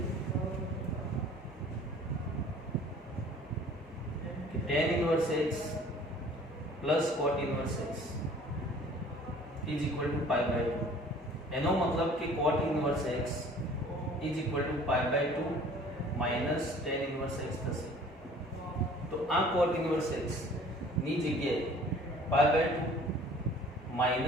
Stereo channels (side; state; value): both; normal; correlation 0.50